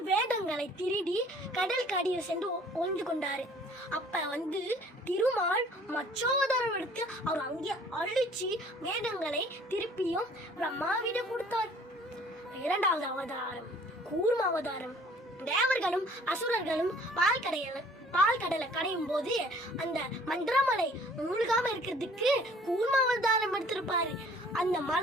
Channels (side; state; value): both; normal; correlation 0.54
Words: வேதங்களை திருடி கடல் கடியில் சென்று ஒழிந்து கொண்டாரு. அப்ப திருமால் மச்சாவதாரம் எடுத்து அவர் அங்கே அழிச்சு வேதங்களை திருப்பியும் பிரம்மாவிடம் கொடுத்தார். இரண்டாவது அவதாரம் கூர்ம அவதாரம். தேவர்களும் அசுரர்களும் பால் கடலை கடையும் போது அந்த மந்திரமலை மூழ்காம இருக்கிறதுக்கு கூர்ம அவதாரம் எடுத்திருப்பாரு. அந்த